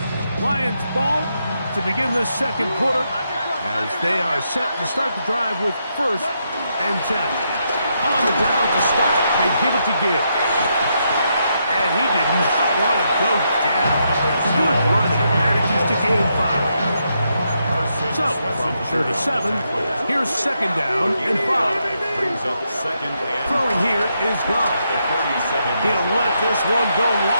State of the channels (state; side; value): inverted; both; correlation -0.80